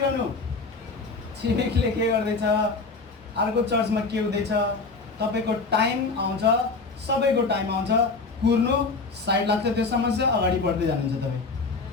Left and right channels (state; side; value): quieter; right; 4.0 dB